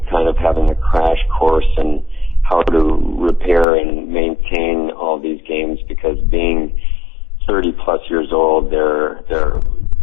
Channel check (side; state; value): right; drops out; at 3.7 s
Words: kind of having a crash course in how to repair and maintain all these games, because being 30+ plus years old. They're